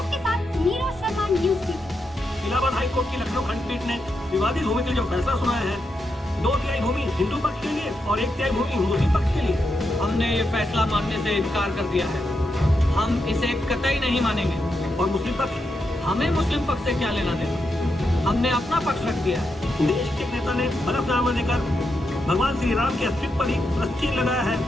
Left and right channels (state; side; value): normal; both; correlation 0.84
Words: के साथ Neeraj Sharma, news TV. Allahabad high court की लखनऊ खंडपीठ ने विवादित भूमि के जो फैसला सुनाया है, 2 तिहाई भूमि हिंदू पक्ष के लिए और 1 तिहाई भूमि मुस्लिम पक्ष के लिए, हमने ये फैसला मानने से इनकार कर दिया है। हम इसे कतई नहीं मानेंगे। और मुस्लिम पक्ष, हमें मुस्लिम पक्ष से क्या लेना देना, हमने अपना पक्ष रख दिया है। देश के एक नेता ने हलफनामा देकर भगवान श्री राम के अस्तित्व पर ही प्रश्न लगाया है